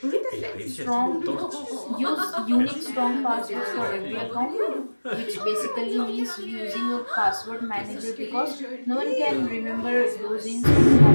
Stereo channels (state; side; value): inverted; both; correlation -1.00